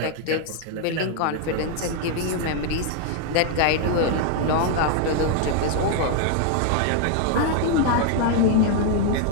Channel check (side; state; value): both; different; correlation 0.00